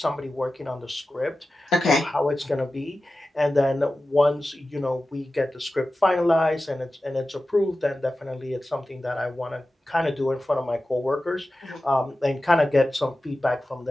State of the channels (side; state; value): both; normal; correlation 0.94